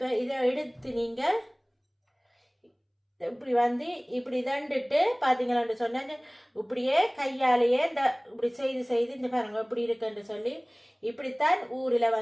இதை எடுத்து நீங்கள் இப்படி வந்து இப்படி தண்டுட்டு பார்த்தீங்களான்னு சொன்னாங்க. இப்படியே கையாலேயே இந்த இப்படி செய்து இந்த பாருங்க இப்படி இருக்குன்னு சொல்லி இப்படித்தான் ஊரில்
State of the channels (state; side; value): identical; both; correlation 1.00